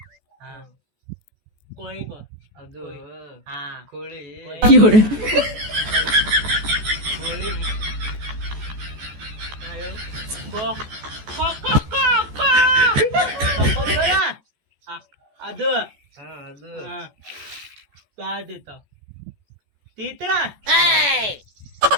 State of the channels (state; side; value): late; left; 14 ms